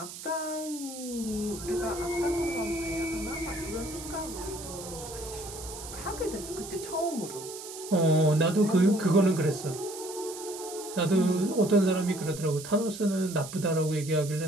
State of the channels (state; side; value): noise; right; hiss, 12 dB below the sound